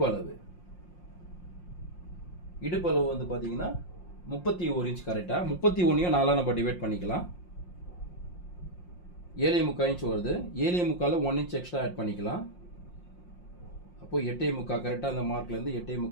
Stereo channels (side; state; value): right; late; 5.6 ms